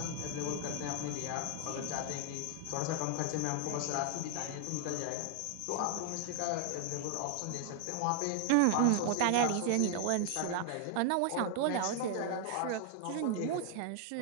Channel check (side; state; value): both; different; correlation 0.00